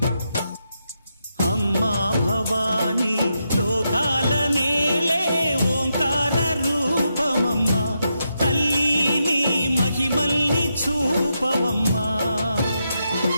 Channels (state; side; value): inverted; both; correlation -0.84